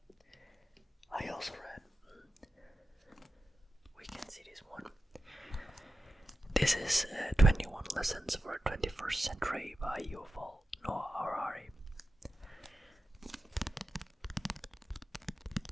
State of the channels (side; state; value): both; normal; correlation 0.92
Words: I also read, we can see this one. This is 21 Lessons for a 21st Century by Yuval Noah Harari.